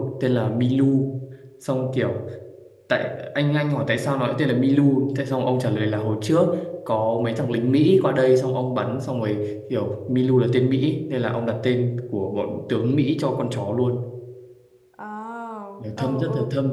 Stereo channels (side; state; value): both; identical; correlation 1.00